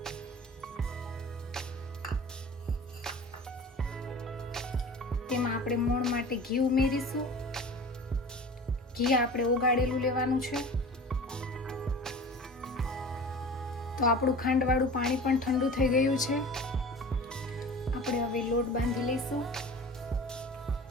તેમાં આપણે મોણ માટે ઘી ઉમેરીશું. ઘી આપણે ઓગાળેલું લેવાનું છે. તો આપણું ખાંડવાળું પાણી પણ ઠંડુ થઈ ગયું છે. આપણે હવે લોટ બાંધી લઈશું.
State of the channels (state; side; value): normal; both; correlation 0.38